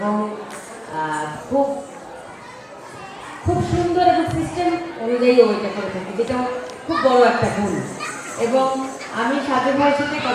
খুব খুব সুন্দর এবং সিস্টেম অনুযায়ী ওইটা করে থাকে, যেটা খুব বড় একটা গুণ। এবং আমি সাজু ভাইয়ের সাথে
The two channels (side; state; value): both; identical; correlation 1.00